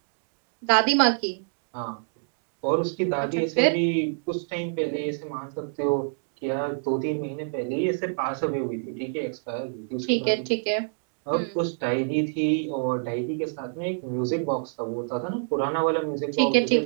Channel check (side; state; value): left; silent; digital silence